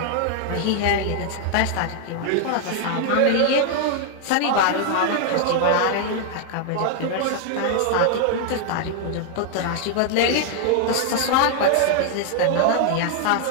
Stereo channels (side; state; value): both; different; correlation 0.00